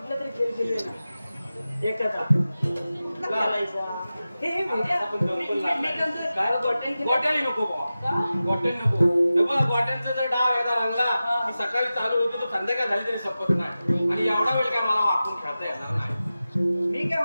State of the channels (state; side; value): inverted; both; correlation -0.95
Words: तरी खेळ खेळूया ना एकाचा खेळायचा. हे म्हणजे आपण दोन पण लागणार. मी काय म्हणतो, काय? गोट्यान खेळ- गोट्याने नको बुवा. का? गोट्याने नको. हे बघ, गोट्यांचा जर डाव एकदा रंगला की सकाळी चालू होतो तो संध्याकाळ झाली तरी संपत नाही आणि एवढा वेळ काय मला वाकून खेळता येणार नाही. मी काय